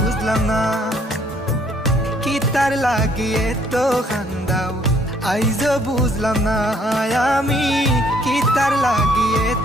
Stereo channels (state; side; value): normal; both; correlation 0.64